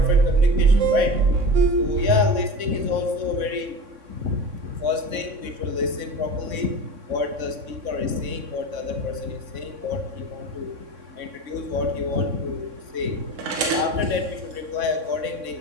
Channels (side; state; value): left; late; 3.6 ms